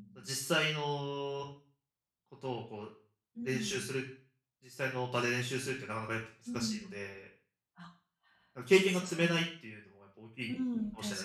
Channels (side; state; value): both; identical; correlation 1.00